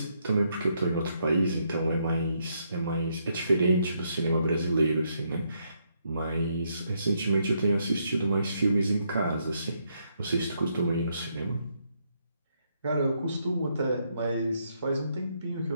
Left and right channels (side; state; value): both; inverted; correlation -0.76